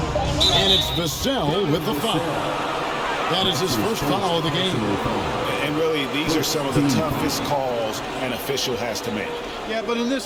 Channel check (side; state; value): both; identical; correlation 1.00